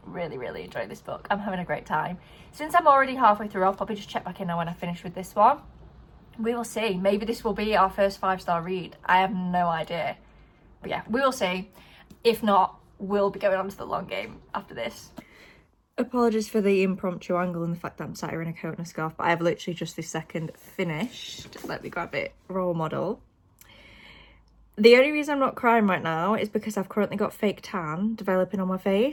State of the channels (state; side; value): identical; both; correlation 1.00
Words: really enjoying this book. I'm having a great time. Since I'm already halfway through, I'll probably just check back in now when I finish with this one. We will see. Maybe this will be our first 5-star read. I have no idea. But yeah, we will see. If not, we'll be going on to The Long Game after this. Apologies for the impromptu angle and the fact that I'm sat here in a coat and a scarf, but I have literally just this second finished. Let me grab it. Role model. The only reason I'm not crying right now is because I've currently got fake tan developing on my